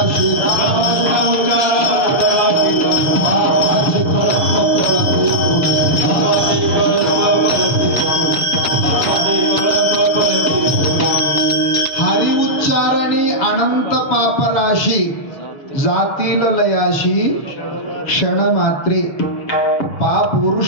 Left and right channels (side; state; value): right; late; 7.2 ms